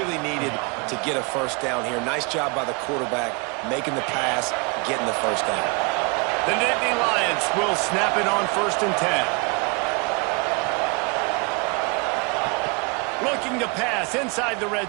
needed to get a first down here. Nice job by the quarterback making the pass, getting the first down. The Nittany Lions will snap it on 1st and 10. Looking to pass inside the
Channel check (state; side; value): quieter; left; 31.5 dB